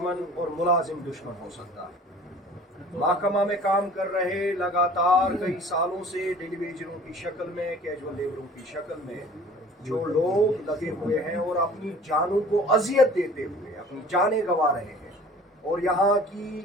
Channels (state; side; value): normal; both; correlation 0.47